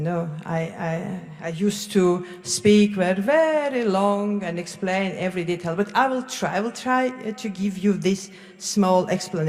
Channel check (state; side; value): identical; both; correlation 1.00